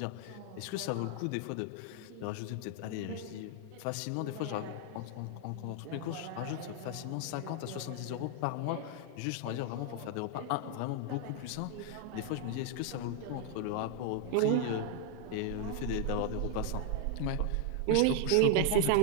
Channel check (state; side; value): different; both; correlation 0.00